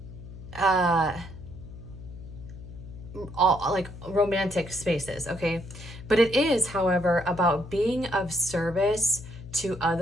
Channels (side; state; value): left; noise; hum, 14 dB below the sound